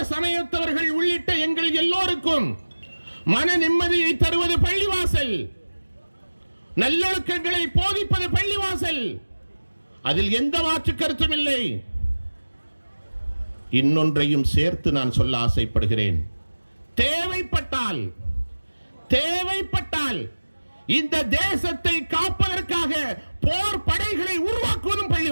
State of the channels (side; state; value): both; inverted; correlation -1.00